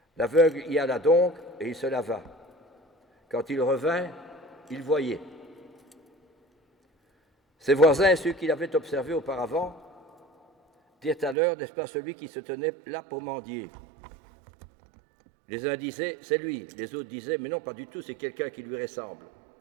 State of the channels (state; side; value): drops out; left; at 11.4 s